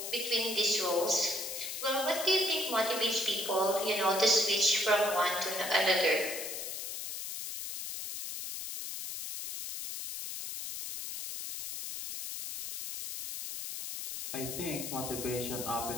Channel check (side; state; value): left; noise; hiss, 6 dB below the sound